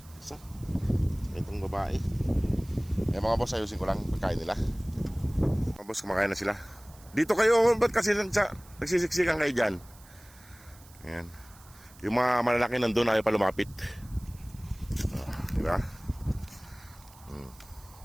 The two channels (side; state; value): right; noise; hiss, 24 dB below the sound